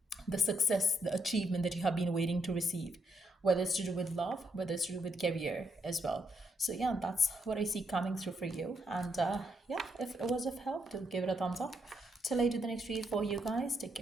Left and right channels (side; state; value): both; normal; correlation 0.77